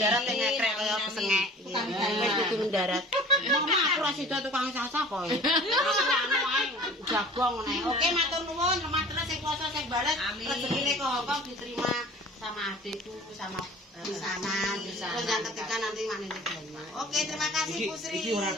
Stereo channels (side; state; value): both; normal; correlation 0.45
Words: ning ngekrek kaya pesengek wis kudu mendarat mama aku ra sida tukang sasa kok aku anu ae jagong ngene oke matur nuwun teman-teman sing kuasa sing balet rezekine kok Hongkong diterima sama adikku sama di sana. Terus yang ketiga nanti manene banyak. Oke, terima kasih Bu Sri. Iki ora